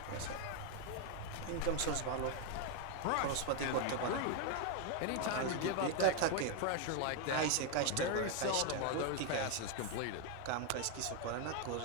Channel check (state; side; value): different; both; correlation 0.01